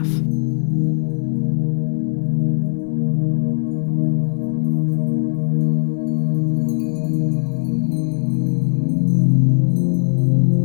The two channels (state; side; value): silent; right; digital silence